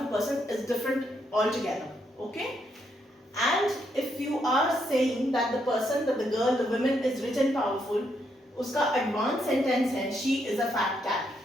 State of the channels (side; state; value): both; normal; correlation 0.77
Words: person is different altogether. Okay? And if you are saying that the person, that the girl, the woman is rich and powerful, uska advanced sentence hai, she is a fat cat.